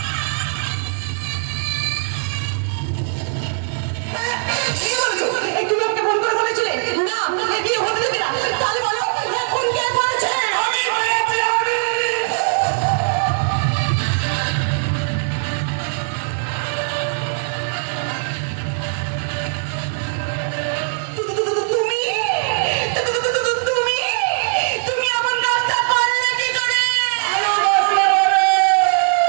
একটু লোককে ফোন করে বলেছিলে না বিয়ে হতে দেবে না, তাহলে বলো এখন কে করেছে? তুমি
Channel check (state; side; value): silent; left; digital silence